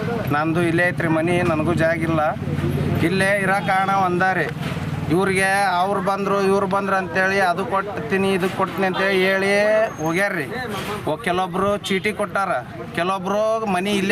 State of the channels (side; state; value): both; identical; correlation 1.00